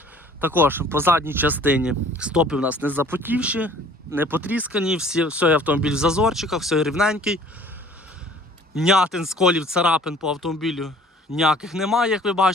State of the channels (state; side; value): normal; both; correlation 0.52